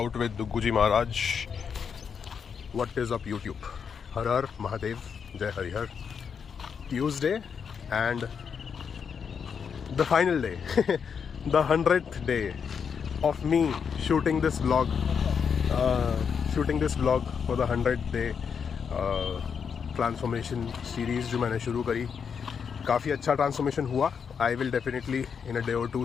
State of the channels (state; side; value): quieter; right; 6.6 dB